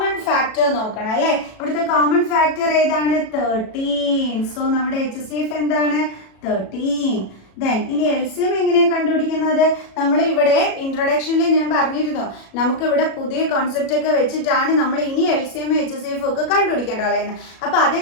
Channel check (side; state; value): right; late; 37 ms